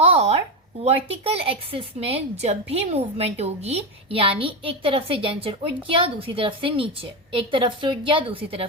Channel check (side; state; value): both; normal; correlation 0.13